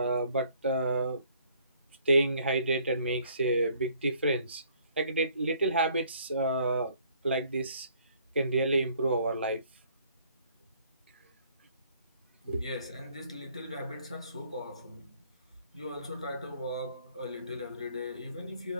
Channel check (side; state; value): both; inverted; correlation -0.61